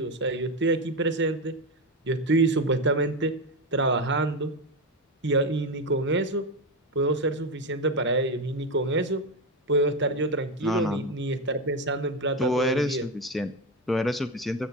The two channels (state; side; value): normal; both; correlation 0.13